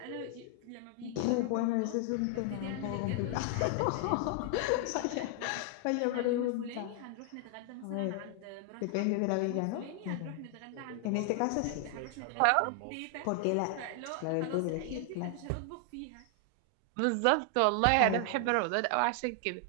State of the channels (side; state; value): both; different; correlation 0.00